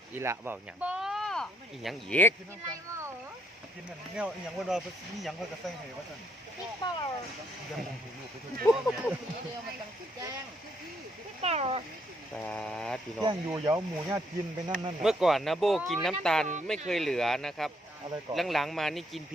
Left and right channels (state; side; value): normal; both; correlation 0.72